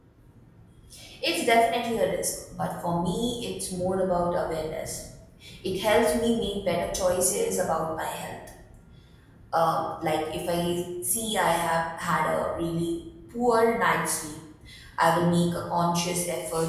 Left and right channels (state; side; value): identical; both; correlation 1.00